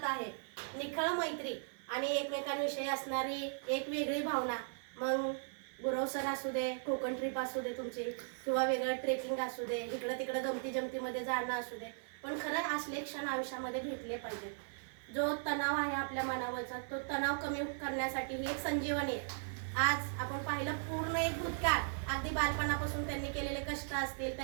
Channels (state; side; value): silent; left; 53 dB below the other